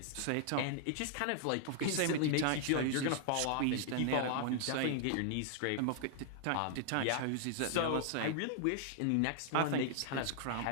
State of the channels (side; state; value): both; different; correlation -0.01